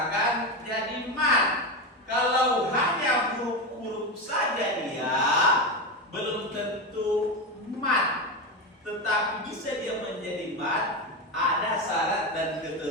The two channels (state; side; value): normal; both; correlation 0.16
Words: jadi mat. Kalau hanya huruf-huruf saja dia belum tentu mat. Tetapi bisa dia menjadi mat, ada syarat dan